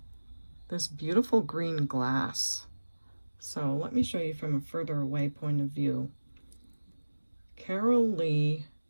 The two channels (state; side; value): inverted; both; correlation -1.00